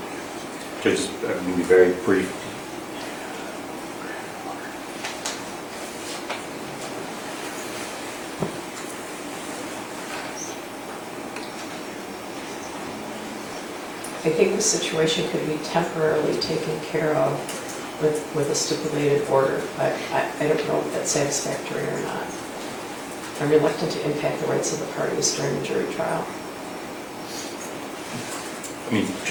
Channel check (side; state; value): both; identical; correlation 1.00